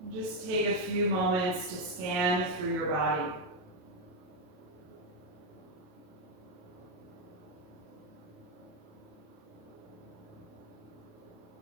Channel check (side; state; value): left; late; 27 ms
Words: And just take a few moments to scan through your body.